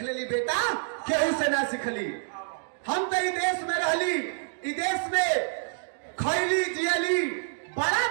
लेली बेटा केहू से ना सिखली। हम तो ई देश में रहली, ई देश में खैली जियली, बड़ा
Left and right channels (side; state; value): left; silent; digital silence